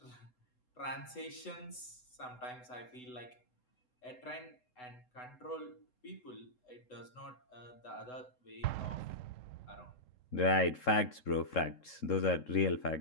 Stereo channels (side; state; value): right; late; 3.7 ms